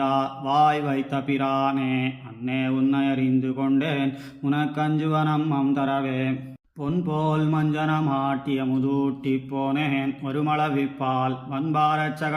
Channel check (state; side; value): identical; both; correlation 1.00